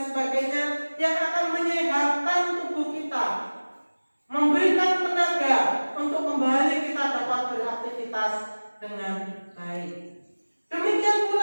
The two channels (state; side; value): inverted; both; correlation -1.00